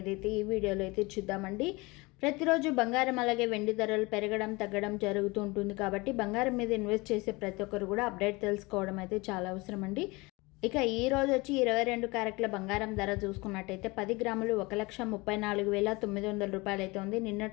అయితే ఈ వీడియోలో అయితే చూద్దామండి. ప్రతిరోజు బంగారం అలాగే వెండి ధరలు పెరగడం తగ్గడం జరుగుతూ ఉంటుంది కాబట్టి బంగారం మీద ఇన్వెస్ట్ చేసే ప్రతి ఒక్కరు కూడా అప్డేట్ తెలుసుకోవడం అయితే చాలా అవసరం అండి. ఇక ఈ రోజు వచ్చి 22 క్యారెట్ల బంగారం ధర చూసుకున్నట్టయితే 10 గ్రాములు 1,34,900 రూపాయలు అయితే ఉంది.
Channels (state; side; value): quieter; right; 24.3 dB